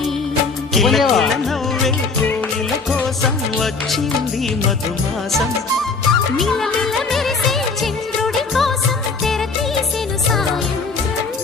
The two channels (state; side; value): quieter; right; 4.4 dB